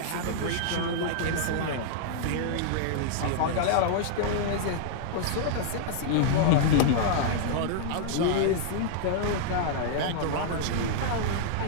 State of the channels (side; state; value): both; different; correlation -0.01